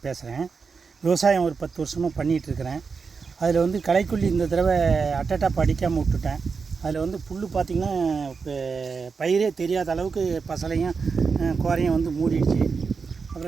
பேசுகிறேன். விவசாயம் ஒரு 10 வருஷமாக பண்ணிகிட்ருக்கிறேன். அதில் வந்து களைக்கொல்லி இந்த தடவை அட்டட்டாப் அடிக்காமல் விட்டுட்டேன். அதில் வந்து புல் பார்த்திங்கன்னா இப்போ பயிரே தெரியாத அளவுக்கு பசலையும் கோரையும் வந்து மூடிடுச்சு.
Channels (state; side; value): quieter; left; 5.1 dB